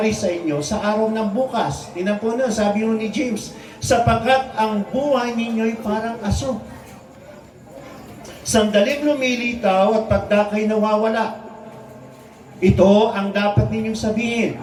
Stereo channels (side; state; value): both; identical; correlation 1.00